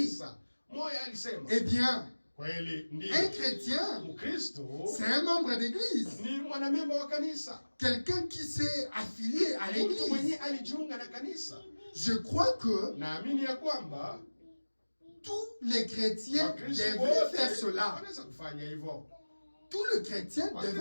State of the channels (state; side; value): inverted; both; correlation -1.00